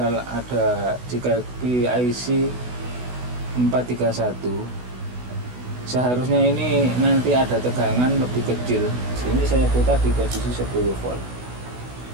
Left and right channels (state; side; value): late; left; 16 ms